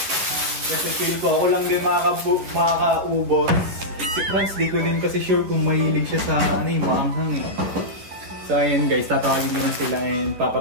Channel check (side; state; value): left; late; 11 ms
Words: Kasi feel ko, ako lang din makakaubos. Si Franz, di ko din kasi sure kung mahilig siya sa ano yung maanghang eh. So ayun guys, tatawagin ko na sila and